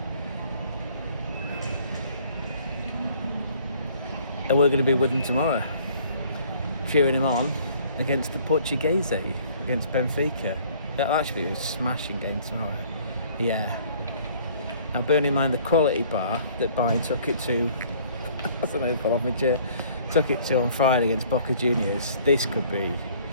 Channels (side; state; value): both; inverted; correlation -0.56